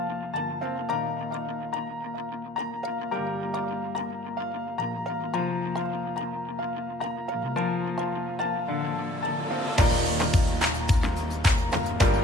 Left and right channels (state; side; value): normal; both; correlation 0.55